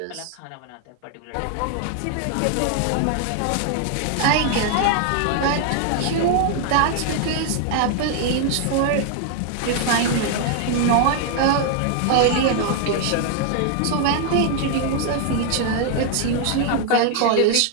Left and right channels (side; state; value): both; different; correlation 0.00